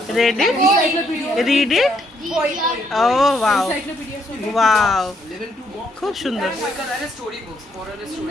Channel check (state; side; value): normal; both; correlation 0.72